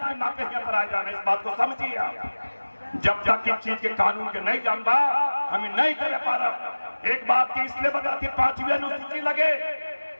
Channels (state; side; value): inverted; both; correlation -1.00